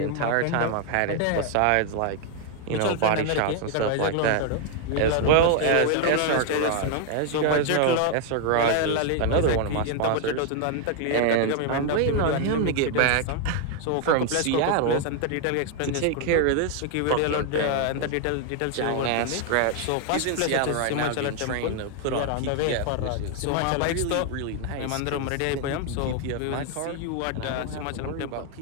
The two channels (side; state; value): both; different; correlation 0.00